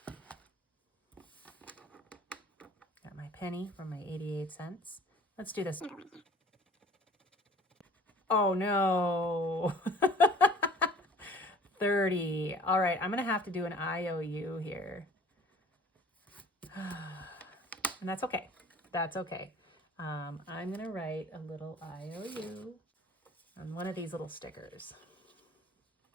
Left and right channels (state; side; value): normal; both; correlation 0.49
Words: Got my penny from my 88 cents. Let's do this. Oh no. 30. All right, I'm gonna have to do an IOU here. And that's okay. That's okay. I'm gonna write a little IOU on one of these little stickers.